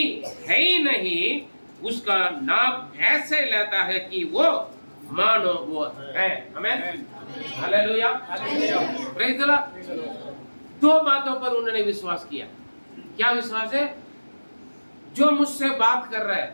है ही नहीं उसका नाम ऐसे लेता है कि वो मानो वो है। आमीन। हालेलुया। Praise the Lord. दो बातों पर उन्होंने विश्वास किया। क्या विश्वास है? जो मुझसे बात कर रहा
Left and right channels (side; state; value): both; inverted; correlation -1.00